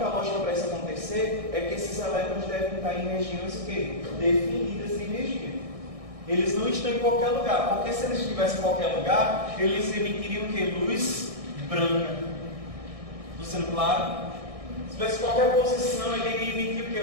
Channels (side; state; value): left; late; 1.6 ms